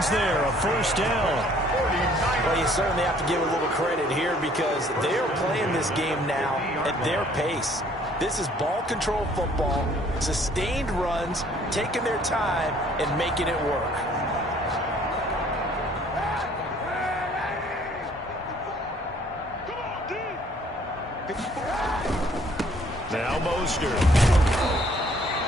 there, a first down. Well, you certainly have to give a little credit here because they're playing this game now at their pace. This is ball control football, sustained runs, taking their time, and making it work. Now Mostert.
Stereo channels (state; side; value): normal; both; correlation 0.59